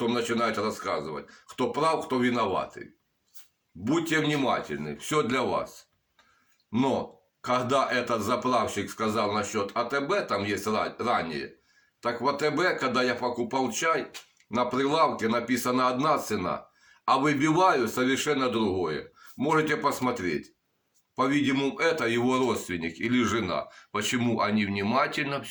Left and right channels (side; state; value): both; identical; correlation 1.00